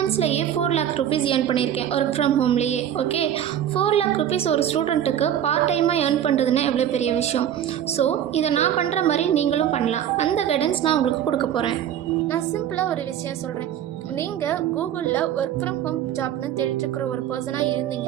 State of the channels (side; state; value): left; quieter; 10.4 dB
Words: 4 lakh rupees ஏர்ன் பண்ணியிருக்கேன் ஒர்க் ஃப்ரம் ஹோம்லேயே. ஓகே, 4 lakh rupees ஒரு ஸ்டூடெண்ட்டுக்கு பார்ட் டைமாக ஏர்ன் பண்ணுறதுன்னா எவ்வளோ பெரிய விஷயம். ஸோ இதை நான் பண்ணுற மாதிரி நீங்களும் பண்ணலாம். அந்த கைடன்ஸ் நான் உங்களுக்கு கொடுக்க போகிறேன். நான் சிம்பிளாக ஒரு விஷயம் சொல்கிறேன். நீங்கள் கூகுளில் ஒர்க் ஃப்ரம் ஹோம் ஜாப்னு தேடிட்டு இருக்கிற ஒரு பர்சனாக